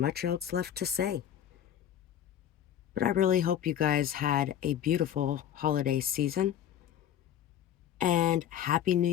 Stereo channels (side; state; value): right; quieter; 10.2 dB